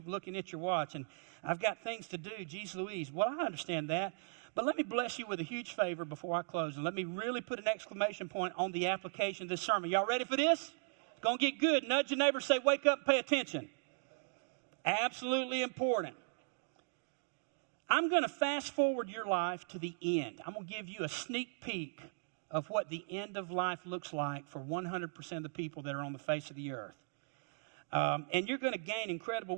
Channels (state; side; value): silent; left; digital silence